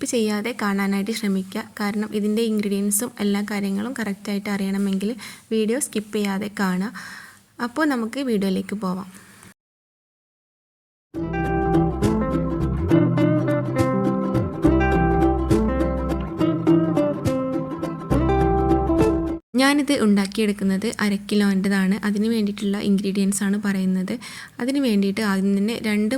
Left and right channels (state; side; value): identical; both; correlation 1.00